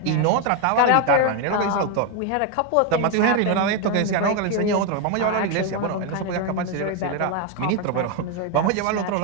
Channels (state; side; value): different; both; correlation 0.01